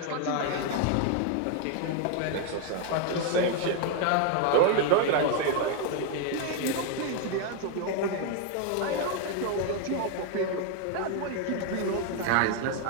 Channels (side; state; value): both; different; correlation 0.01